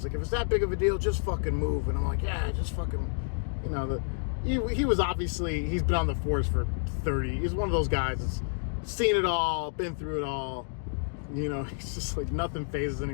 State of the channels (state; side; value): silent; right; digital silence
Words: like, if it's that big of a deal, just fucking move. And I'm like, yeah, just fucking, you know, he was obviously, he's been on the force for 30. He's one of those guys that's seen it all, been through it all. You know, he's just like, nothing phases